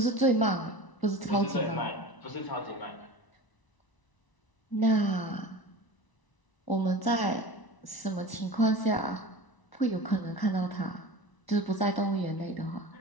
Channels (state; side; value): late; right; 1.0 ms